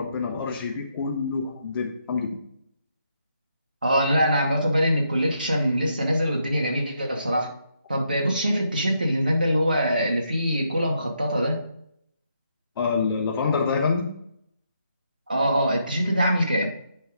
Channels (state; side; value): inverted; both; correlation -0.77